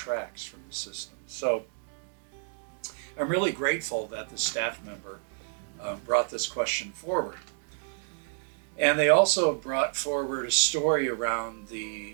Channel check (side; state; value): left; silent; 58 dB below the other